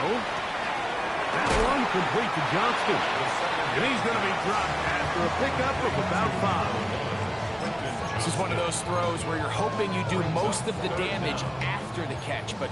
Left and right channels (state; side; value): identical; both; correlation 1.00